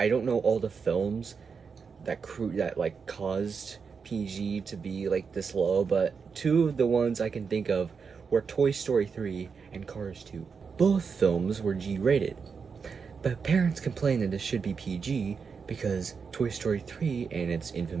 don't know all the films that caused PG to be this low, but 2 of the ones I can think of were Toy Story 3 and Cars 2. Both films were G-rated, but parents complained that this should be PG because Toy Story 3 and its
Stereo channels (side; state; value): left; quieter; 5.7 dB